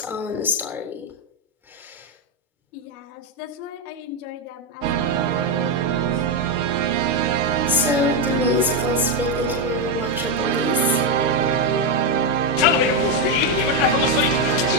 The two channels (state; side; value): normal; both; correlation 0.05